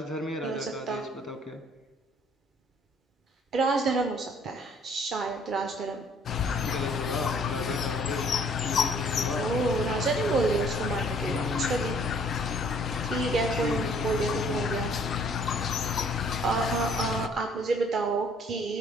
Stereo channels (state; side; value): normal; both; correlation 0.59